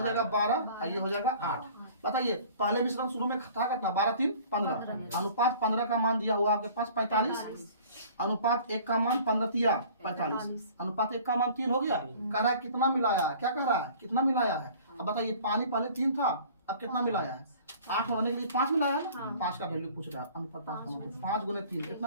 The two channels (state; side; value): inverted; both; correlation -0.48